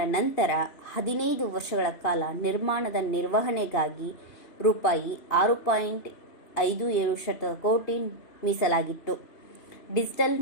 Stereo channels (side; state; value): right; late; 2.9 ms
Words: ನಂತರ 15 ವರ್ಷಗಳ ಕಾಲ ನಿರ್ಮಾಣದ ನಿರ್ವಹಣೆಗಾಗಿ ರೂಪಾಯಿ 6.57 ಕೋಟಿ ಮೀಸಲಾಗಿತ್ತು. ಡಿಜಿಟಲ್